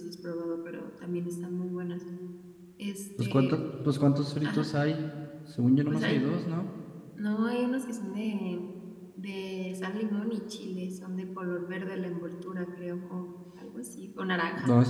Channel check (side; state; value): both; identical; correlation 1.00